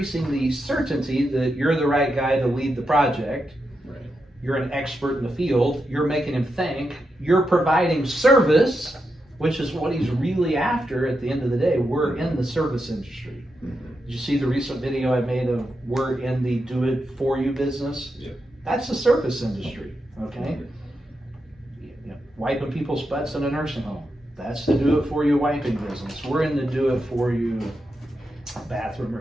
certainty that you're the right guy to lead the project. Right. You're an expert in the field. You're making him think. You're providing service, which is what he's really after at the end of the day. We're in the service industry. Did you see the recent video I made of we're in the do-it-for-you business? Yeah. That's the service industry, okay? You know, wiping people's butts in a nursing home. That's the do-it-for-you wiping business. We're in the do-it-for-you bathroom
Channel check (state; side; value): normal; both; correlation 0.86